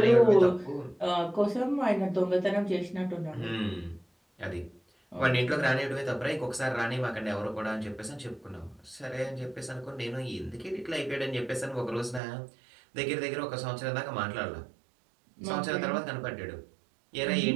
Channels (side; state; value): left; drops out; at 12.2 s